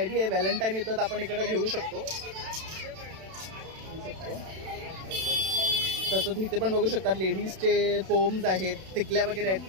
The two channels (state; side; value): late; left; 32 ms